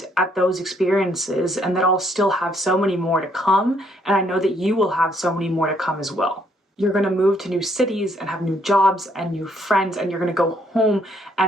at those experiences, and that I'll still have so many more to come, and I know that you will have so many more to come as well. You're gonna move to new cities and have new jobs and new friends, and you're gonna go home,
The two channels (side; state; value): both; normal; correlation 0.69